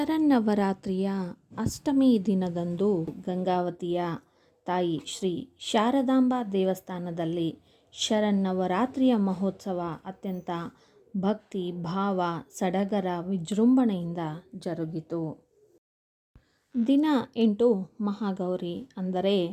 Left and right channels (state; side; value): identical; both; correlation 1.00